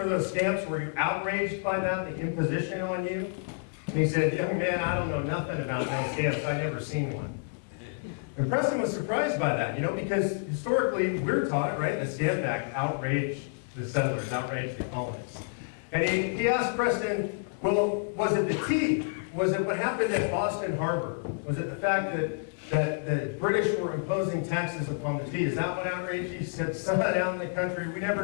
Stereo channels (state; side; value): silent; right; digital silence